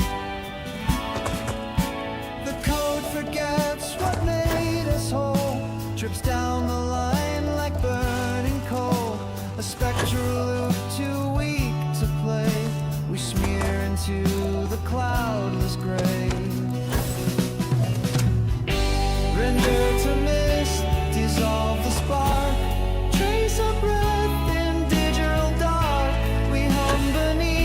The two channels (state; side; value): identical; both; correlation 1.00